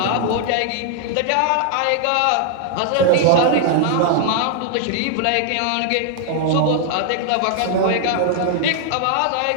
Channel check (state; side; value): different; both; correlation 0.00